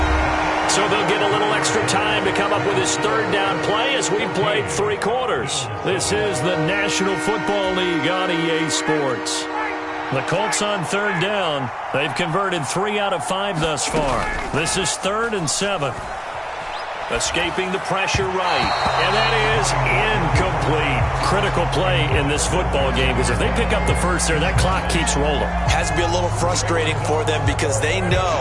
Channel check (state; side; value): identical; both; correlation 1.00